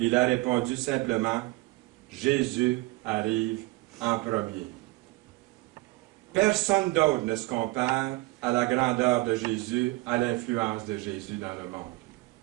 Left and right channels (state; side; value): quieter; left; 21.0 dB